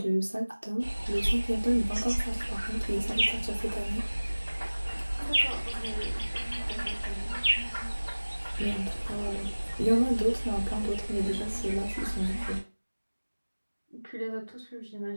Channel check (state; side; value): inverted; both; correlation -1.00